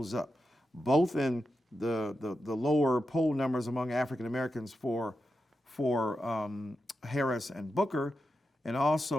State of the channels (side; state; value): both; normal; correlation 0.89